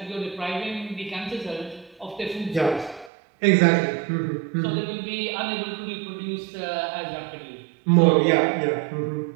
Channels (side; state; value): left; drops out; at 3.1 s